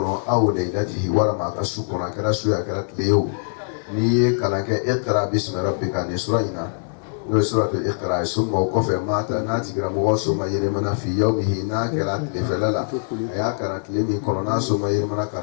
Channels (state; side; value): silent; right; 64 dB below the other